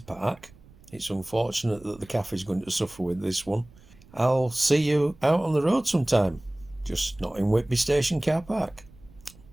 park. It's unfortunate that the cafe is going to suffer with this one. I'll see you out on the road sometime, just not in Whitby Station car park.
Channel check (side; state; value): right; noise; rumble, 24 dB below the sound